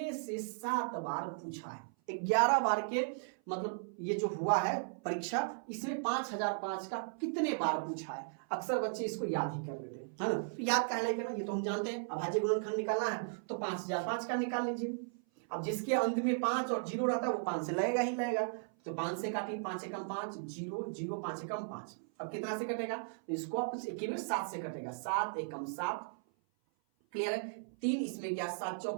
से 7 बार पूछा है। 11 बार के मतलब ये जो हुआ है परीक्षा, इसमें 5005 का कितने बार पूछा है? अक्सर बच्चे इसको याद ही कर लेते हैं, है ना? तो याद कहने करना, ये तो हम जानते हैं, अभाज्य गुणनखंड निकालना है तो 5005 का निकाल लीजिए। अब जिसके अंत में 5 और 0 रहता है वो 5 से लगेगा ही लगेगा, तो 5 से काटिए, 5 एकम 5, 0 0, 5 एकम 5। अब कितना से कटेगा? तो इसको आप 7 से कटेगा, 7 एकम 7। क्लियर है? 3 इसमें गया, 7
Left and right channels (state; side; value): silent; left; 54 dB below the other